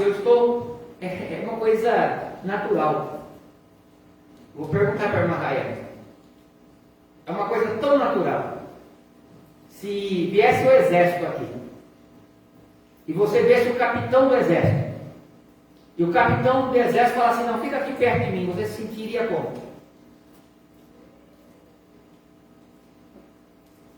eu estou, é uma coisa natural. Vou perguntar para a irmã Raia. É uma coisa tão natural. Se viesse o exército aqui, e você visse o capitão do exército, e o capitão do exército falasse assim, não, fica aqui perto de mim, você se sentiria como?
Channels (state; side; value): identical; both; correlation 1.00